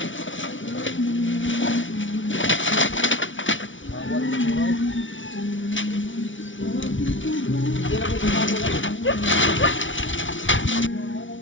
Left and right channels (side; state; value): right; late; 0.56 ms